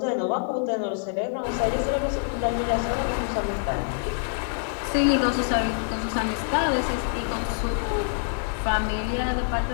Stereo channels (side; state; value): right; silent; digital silence